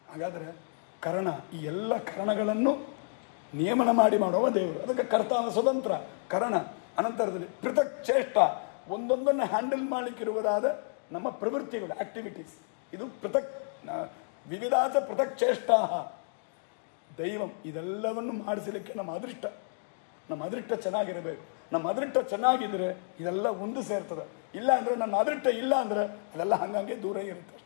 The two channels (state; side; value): silent; right; digital silence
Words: ಹಾಗಾದರೆ ಕರ್ಣ, ಈ ಎಲ್ಲ ಕರ್ಣಗಳನ್ನು ನಿಯಮನ ಮಾಡಿ ಮಾಡುವ ದೇವರು, ಅದಕ್ಕೆ ಕರ್ತಾವ ಸ್ವತಂತ್ರ ಕರ್ಣ. ಅನಂತರದಲ್ಲಿ ಪೃಥಕ್ ಚೇಷ್ಟ, ಒಂದೊಂದನ್ನು ಹ್ಯಾಂಡಲ್ ಮಾಡಲಿಕ್ಕಿರುವುದಾದ ನಮ್ಮ ಪ್ರವೃತ್ತಿಗಳು, ಆಕ್ಟಿವಿಟೀಸ್, ಇದು ಪೃಥಕ್ ವಿವಿಧಾಚ ಪೃಥಕ್ ಚೇಷ್ಟಾ ದೈವಂ. ಇದೆಲ್ಲವನ್ನು ಮಾಡಿಸಲಿಕ್ಕೆ ನಮ್ಮ ಅದೃಷ್ಟ ಚೆನ್ನಾಗಿರಬೇಕು. ನಮ್ಮ ಅದೃಷ್ಟ ಚೆನ್ನಾಗಿದ್ದರೆ ಇದೆಲ್ಲ ಒಂದು ಸೇರ್ತದೆ. ಇಲ್ಲ ಅಂದರೆ ನನ್ನ ಅದೃಷ್ಟ ಇಲ್ಲ ಅಂದರೆ ಅದೆಲ್ಲ ಹಂಗಂಗೆ ದೂರ ಇರುತ್ತೆ